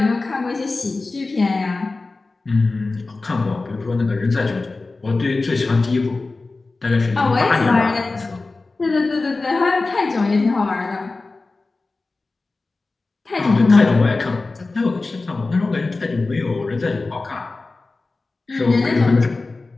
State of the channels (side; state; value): right; quieter; 3.5 dB